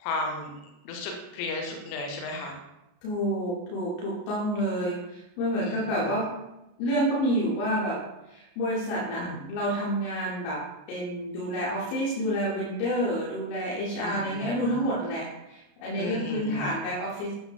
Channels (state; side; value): late; right; 34 ms